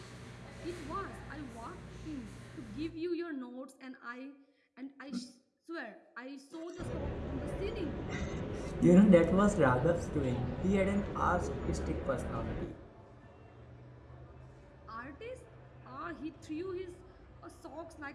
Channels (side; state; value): both; identical; correlation 1.00